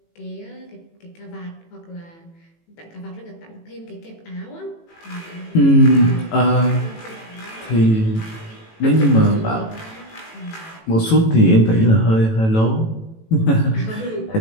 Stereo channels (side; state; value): right; late; 18 ms